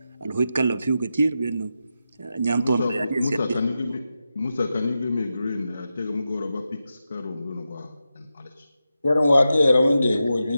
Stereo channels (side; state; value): both; inverted; correlation -0.90